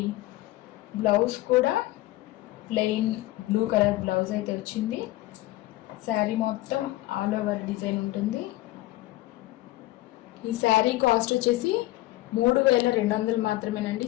బ్లౌజ్ కూడా ప్లెయిన్ బ్లూ కలర్ బ్లౌజ్ అయితే వచ్చింది. శారీ మొత్తం ఆల్ ఓవర్ డిజైన్ ఉంటుంది. ఈ శారీ కాస్ట్ వచ్చేసి 3200 మాత్రమేనండి.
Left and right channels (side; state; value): right; quieter; 17.4 dB